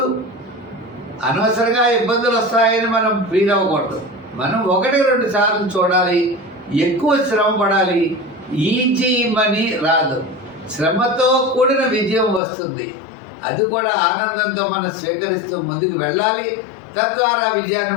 అనవసరంగా ఇబ్బందులు వస్తాయని మనం ఫీల్ అవ్వకూడదు. మనం 1, 2 సార్లు చూడాలి. ఎక్కువ శ్రమ పడాలి. ఈజీ మనీ రాదు. శ్రమతో కూడిన విజయం వస్తుంది. అది కూడా ఆనందంతో మనం స్వీకరిస్తూ ముందుకు వెళ్ళాలి. తద్వారా విజయాన్ని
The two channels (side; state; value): right; drops out; at 12.4 s